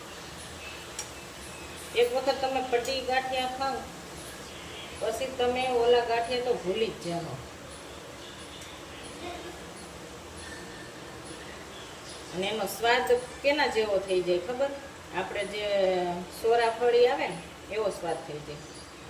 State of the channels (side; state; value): both; identical; correlation 1.00